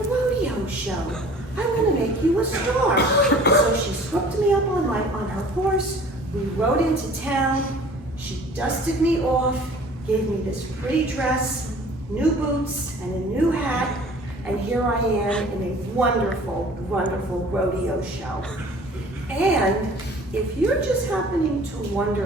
show. I'm gonna make you a star. So she swooped me up on her horse. We rode into town. She dusted me off, gave me this pretty dress, new boots, and a new hat, and here I am in a wonderful, wonderful rodeo show. And if you're just happening to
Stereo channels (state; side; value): normal; both; correlation 0.49